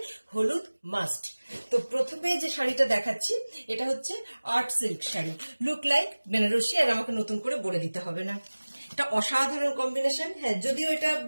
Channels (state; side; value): inverted; both; correlation -1.00